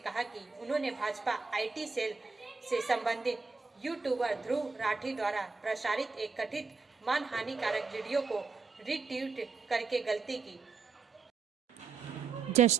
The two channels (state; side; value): quieter; left; 4.7 dB